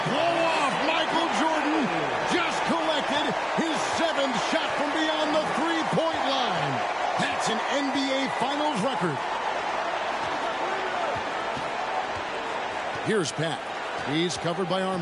blow off. Michael Jordan just collected his 7th shot from beyond the three-point line. That's an NBA Finals record. Here's Pat. He's covered by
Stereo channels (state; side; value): identical; both; correlation 1.00